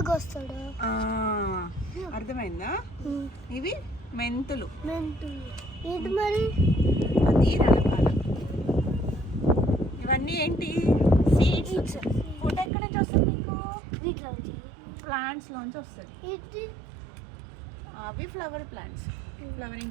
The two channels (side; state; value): left; drops out; at 12.7 s